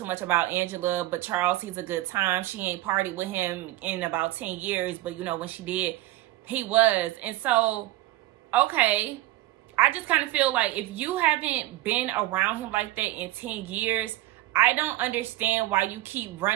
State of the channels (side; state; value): left; quieter; 16.5 dB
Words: much about Angela, but Charles, he's a good time. She ain't partied with him in about 10 years, but, you know, when she did, he was. And so, okay, I just kind of feel like if you haven't been around him like that in 10 years, I don't understand why you keep